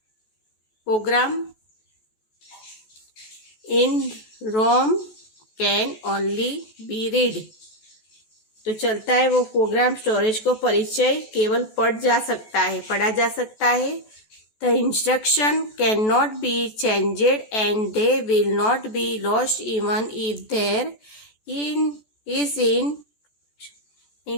program in ROM can only be read, तो चलता है वो प्रोग्राम स्टोरेज को परिचय केवल पढ़ा जा सकता है। The instruction can not be changed and they will not be lost even if there is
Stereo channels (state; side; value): late; right; 14 ms